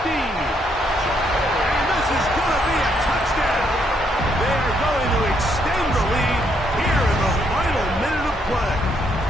And this is going to be a touchdown. They are going to extend the lead here in the final minute of play.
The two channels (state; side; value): normal; both; correlation 0.73